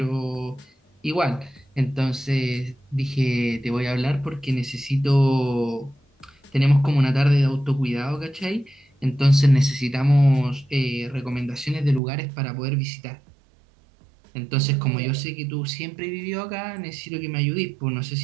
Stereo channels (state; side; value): drops out; left; at 12.0 s